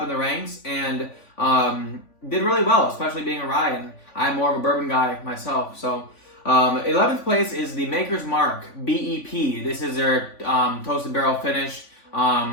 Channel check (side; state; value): right; late; 3.5 ms